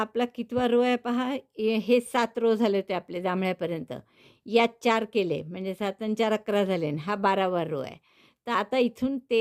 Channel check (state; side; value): identical; both; correlation 1.00